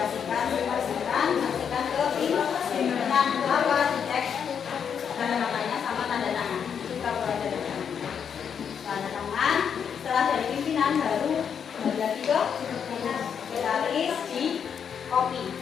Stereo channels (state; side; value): quieter; right; 7.5 dB